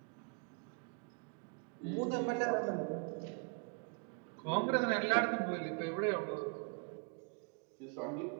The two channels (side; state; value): left; quieter; 36.8 dB